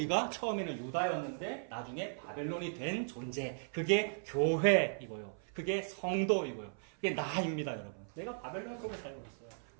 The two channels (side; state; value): left; silent; 53 dB below the other